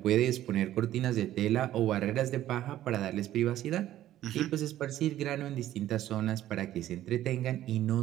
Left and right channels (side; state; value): left; quieter; 13.2 dB